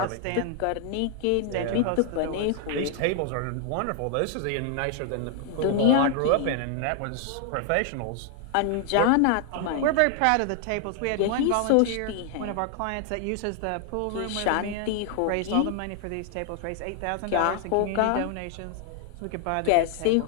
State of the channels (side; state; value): both; different; correlation 0.00